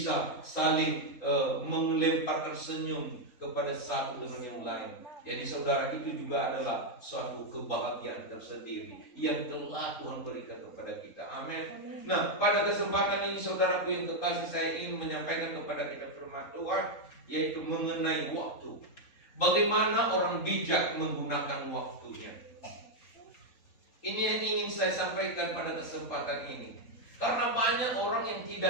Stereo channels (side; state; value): right; late; 3.8 ms